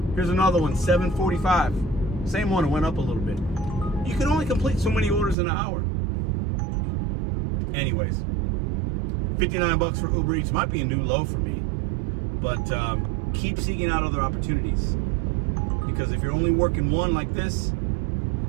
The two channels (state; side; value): drops out; left; at 5.4 s